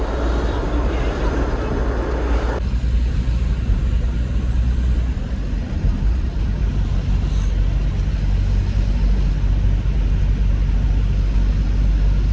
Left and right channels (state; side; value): identical; both; correlation 1.00